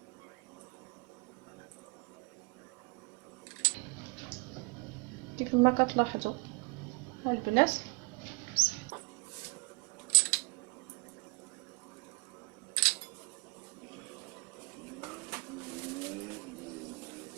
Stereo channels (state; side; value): quieter; left; 31.4 dB